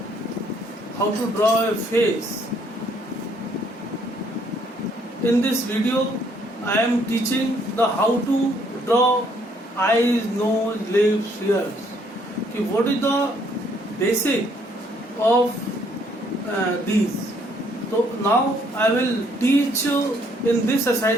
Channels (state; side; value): normal; both; correlation 0.66